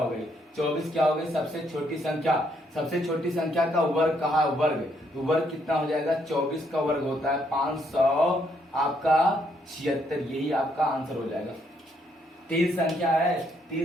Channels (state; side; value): normal; both; correlation 0.72